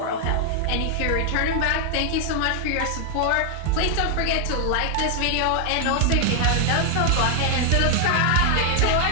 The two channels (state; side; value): different; both; correlation 0.00